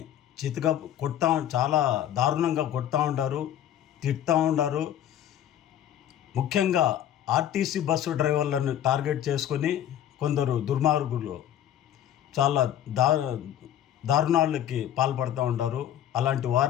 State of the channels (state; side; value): quieter; right; 11.1 dB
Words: చితక చాలా దారుణంగా కొడతా ఉంటారు, తిడతా ఉంటారు. ముఖ్యంగా ఆర్టీసీ బస్సు డ్రైవర్లను టార్గెట్ చేసుకొని కొందరు దుర్మార్గులు చాలా దారుణాలకి పాల్పడుతూ ఉంటారు. అలాంటి